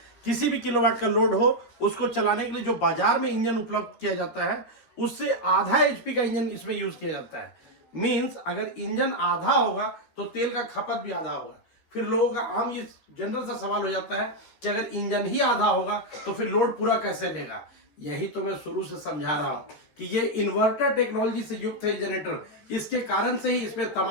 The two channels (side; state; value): right; late; 13 ms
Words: किसी भी किलोवाट का लोड हो उसको चलाने के लिए जो बाजार में इंजन उपलब्ध किया जाता है उससे आधा HP का इंजन इसमें यूज किया जाता है। मींस अगर इंजन आधा होगा तो तेल का खपत भी आधा होगा। फिर लोगों का आम ये जनरल सा सवाल हो जाता है कि अगर इंजन ही आधा होगा तो फिर लोड पूरा कैसे लेगा। यही तो मैं शुरू से समझा रहा हूं कि ये इन्वर्टर टेक्नोलॉजी से युक्त है जनरेटर। इसके कारण से ही इसमें